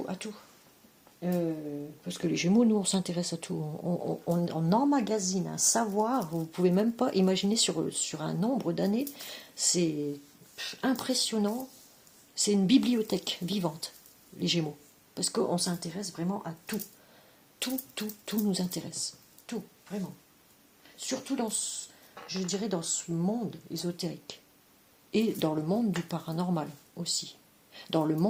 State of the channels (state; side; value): identical; both; correlation 1.00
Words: Parce que les Gémeaux, nous, on s'intéresse à tout. On emmagasine un savoir, vous ne pouvez même pas imaginer sur un nombre d'années. C'est impressionnant. C'est une bibliothèque vivante, les Gémeaux. Parce qu'on s'intéresse vraiment à tout. Tout nous intéresse. Tout, vraiment. Surtout je dirais, dans ce monde ésotérique. Et dans le monde du paranormal aussi. Dans le